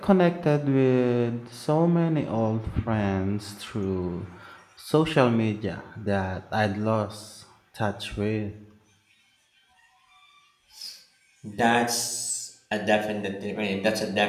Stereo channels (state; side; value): identical; both; correlation 1.00